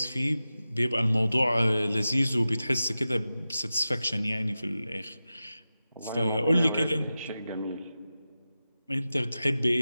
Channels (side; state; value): both; inverted; correlation -0.94